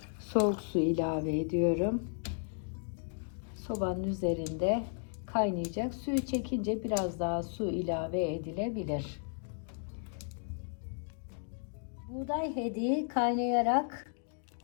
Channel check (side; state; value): right; silent; 55 dB below the other